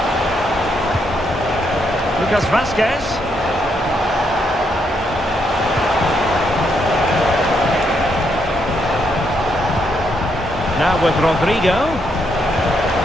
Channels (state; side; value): normal; both; correlation 0.77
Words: Lucas Vasquez. Now with Rodrigo.